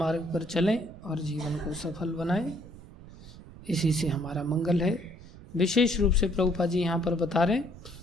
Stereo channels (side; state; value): right; noise; rumble, 18 dB below the sound